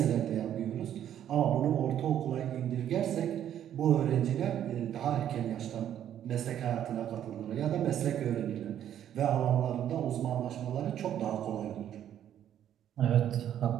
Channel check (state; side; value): quieter; left; 10.5 dB